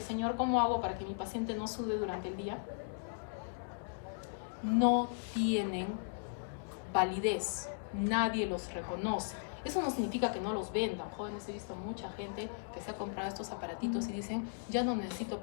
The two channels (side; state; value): right; silent; digital silence